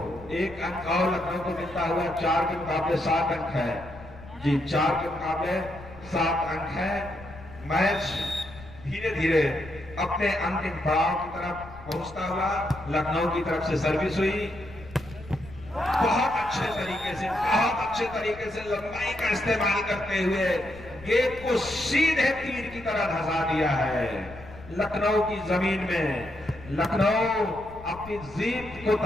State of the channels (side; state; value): left; noise; rumble, 17 dB below the sound